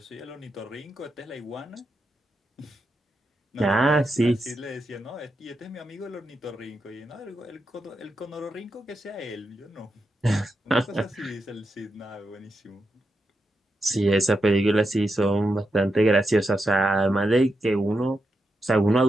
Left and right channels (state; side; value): normal; both; correlation 0.86